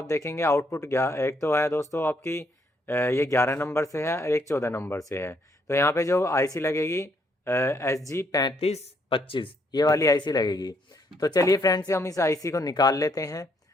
देखेंगे आउटपुट एक तो है दोस्तों आपकी ये 11 नंबर से है और एक 14 नंबर से है। तो यहाँ पे जो आईसी लगेगी SG 3525, ये वाली आईसी लगेगी। तो चलिए फ्रेंड्स, हम इस आईसी को निकाल लेते हैं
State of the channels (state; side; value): normal; both; correlation 0.72